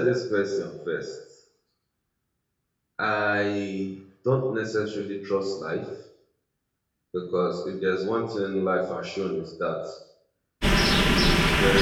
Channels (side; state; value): both; identical; correlation 1.00